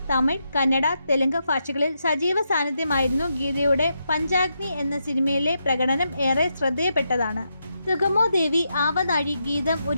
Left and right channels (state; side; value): inverted; both; correlation -0.83